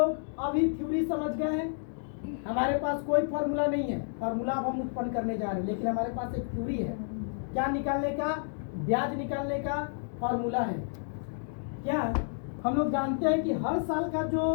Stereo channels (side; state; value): right; silent; digital silence